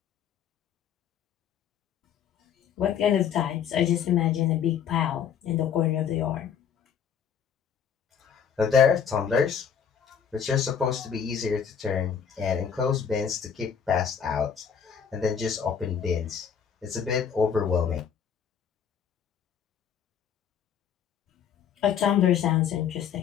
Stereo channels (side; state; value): right; quieter; 7.8 dB